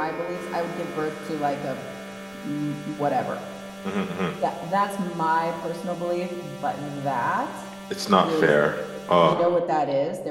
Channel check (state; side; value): noise; right; rumble, 28 dB below the sound